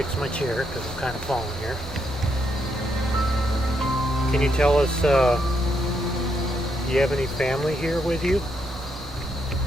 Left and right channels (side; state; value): both; normal; correlation 0.77